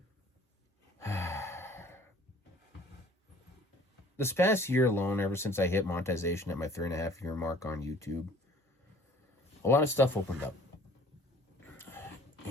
this past year alone, ever since I hit monetization at my 3.5-year mark on YouTube, a lot of stuff opened up.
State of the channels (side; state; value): both; normal; correlation 0.52